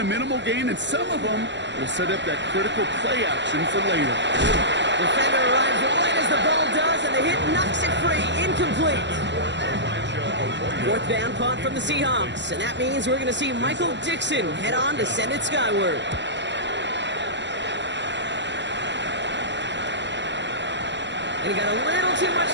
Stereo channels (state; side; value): late; left; 0.52 ms